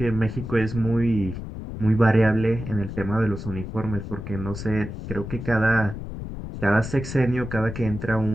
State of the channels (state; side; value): noise; left; rumble, 8 dB below the sound